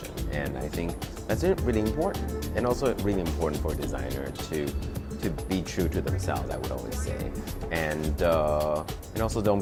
And I think that's really important, and also really important for a designer to be true to themselves, I would always say. And also don't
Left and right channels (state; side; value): identical; both; correlation 1.00